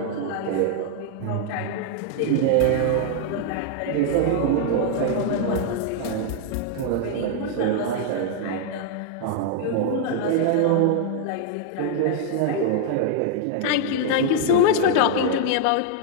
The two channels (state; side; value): different; both; correlation 0.00